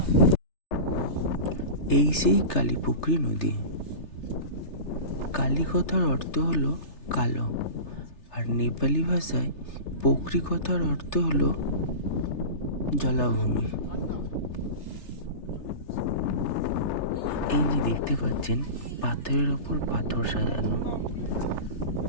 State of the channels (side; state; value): right; late; 3.3 ms